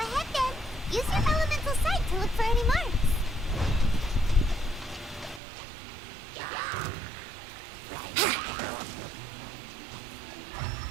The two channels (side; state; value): left; drops out; at 5.4 s